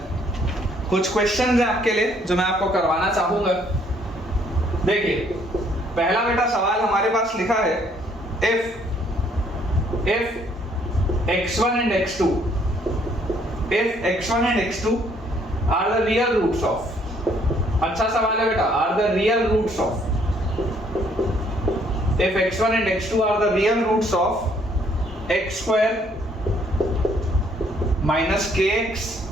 कुछ क्वेश्चंस हैं आपके लिए जो मैं आपको करवाना चाहूंगा। देखिए, पहला बेटा सवाल हमारे पास लिखा है, if x1 and x2 are the real roots of, अच्छा सवाल है बेटा, are the real roots of, if x1 and x2 are the real roots of x square minus kx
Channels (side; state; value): both; normal; correlation 0.65